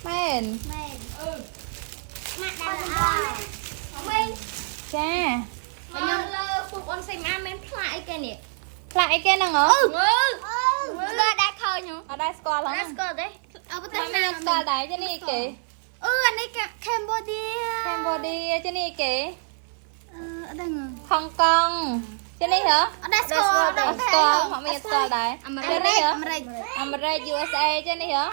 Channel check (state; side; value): silent; left; 59 dB below the other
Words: មែន មែនម៉ាក់ដល់អើវិញ ចា ខ្ញុំលើពុកអូនសេម៉ាមានផ្លាកអីគេនេះ ផ្លាក់អីគេហ្នឹងហ៎ មើលដាក់ឃើញហ្នឹង អត់ដែរស្គាល់ហ្នឹង ស្គាល់ទេអើប៉ុន្តែ ណាស្គាល់ដែរចានេះអីគេ អានេះកម្ពុជា កម្ពុជាចានេះអីគេ អ ở đây ngờ Hong Kong trên đây hả ở đây score họ mình score đấy trên đây Amerik hả Amerik America USA trên đây hả